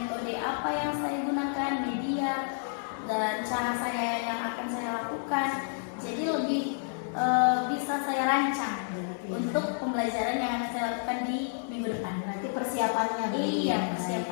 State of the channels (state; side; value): silent; right; 58 dB below the other